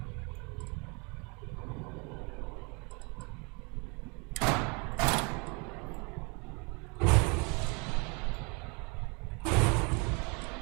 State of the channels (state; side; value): quieter; left; 31.2 dB